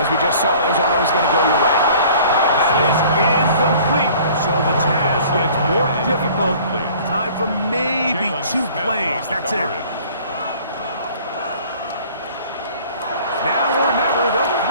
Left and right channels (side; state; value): both; inverted; correlation -0.51